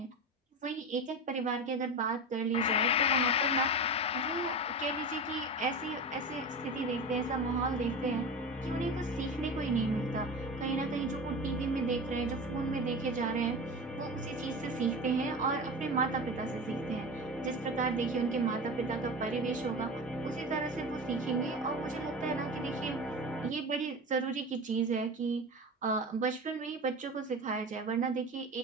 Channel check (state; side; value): normal; both; correlation 0.28